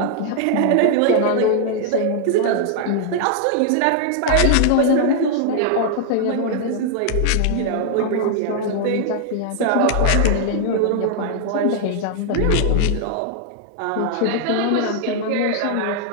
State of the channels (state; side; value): different; both; correlation -0.01